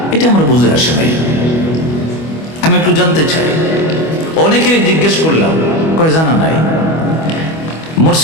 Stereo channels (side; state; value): right; late; 25 ms